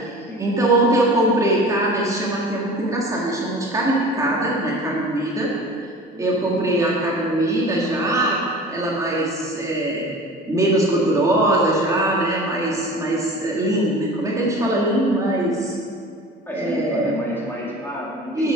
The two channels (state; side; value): normal; both; correlation 0.40